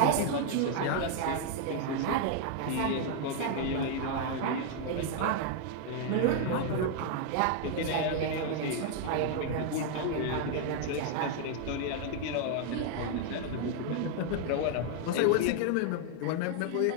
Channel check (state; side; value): different; both; correlation 0.00